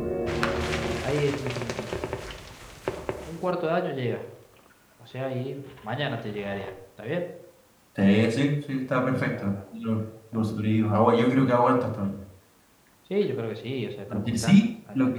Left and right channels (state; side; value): identical; both; correlation 1.00